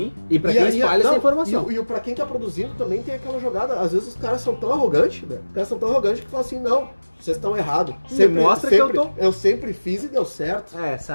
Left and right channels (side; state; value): both; inverted; correlation -1.00